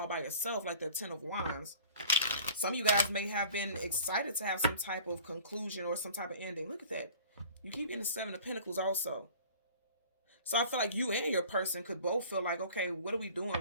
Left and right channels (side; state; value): both; inverted; correlation -0.46